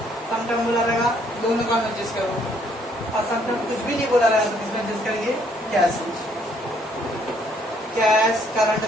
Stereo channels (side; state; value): both; normal; correlation 0.66